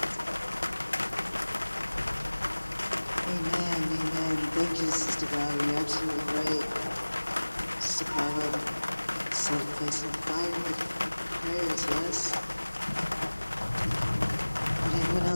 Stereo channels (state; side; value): inverted; both; correlation -1.00